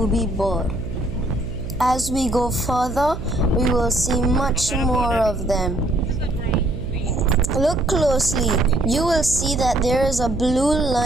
bird. As we go further, we will see much more of them. Look closely. You will see that there is a blue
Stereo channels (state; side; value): noise; right; hum, 8 dB below the sound